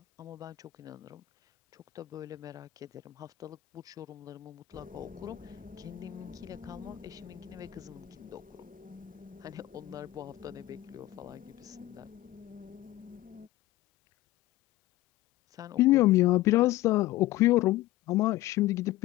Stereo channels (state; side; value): quieter; right; 16.2 dB